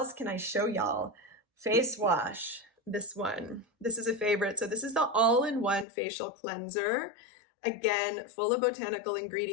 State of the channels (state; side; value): drops out; right; at 5.9 s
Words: can I show y'all? Face wash. This one. This is a favorite. So this is the all-in-one facial cleanser. Again, full of botanical